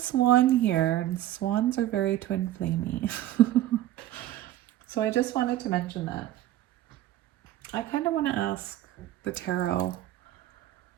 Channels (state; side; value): quieter; left; 13.7 dB